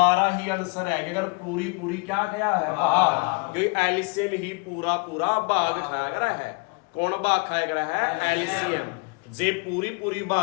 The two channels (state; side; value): quieter; right; 31.9 dB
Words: ही आंसर है अगर पूरी क्या गया है भाग क्योंकि एलसीएम ही पूरा भाग खाया गया है कौन भाग खाया गया है एलसीएम जे पूरी